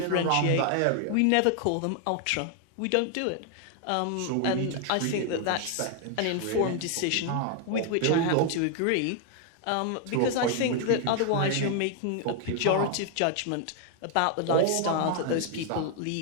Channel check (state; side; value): different; both; correlation 0.00